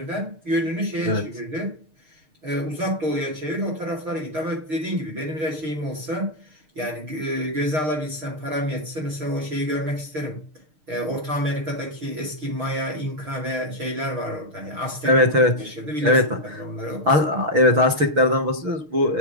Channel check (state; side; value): late; left; 6.6 ms